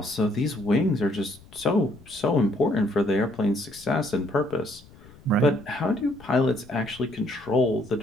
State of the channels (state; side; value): noise; left; rumble, 23 dB below the sound